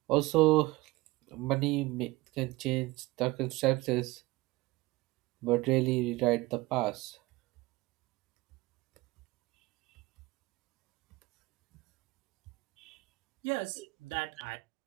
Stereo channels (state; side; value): quieter; left; 21.0 dB